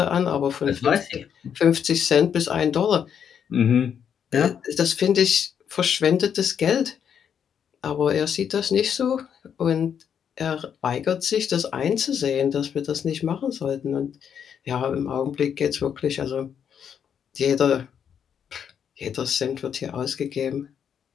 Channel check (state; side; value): quieter; right; 8.1 dB